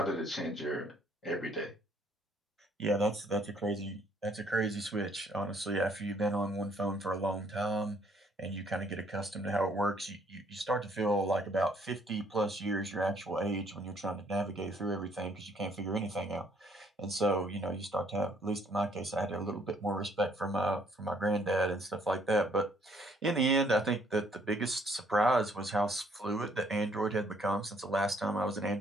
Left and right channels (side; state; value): both; normal; correlation 0.65